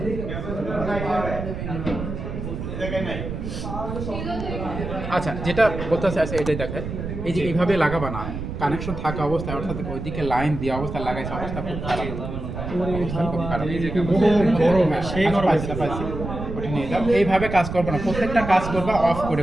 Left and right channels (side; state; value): right; noise; rumble, 6 dB below the sound